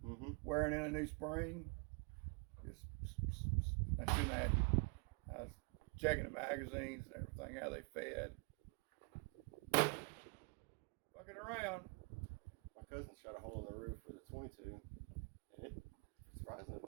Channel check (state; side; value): quieter; left; 34.0 dB